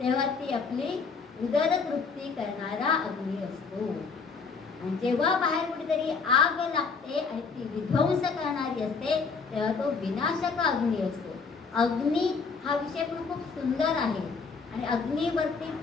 ती आपली उदरतृप्ती करणारा अग्नी असतो. आणि जेव्हा बाहेर कुठेतरी आग लागते आणि ती विध्वंस करणारी असते तेव्हा तो विनाशक अग्नी असतो. अग्नी हा विषय पण खूप सुंदर आहे आणि अग्नीवरती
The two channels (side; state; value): right; quieter; 5.0 dB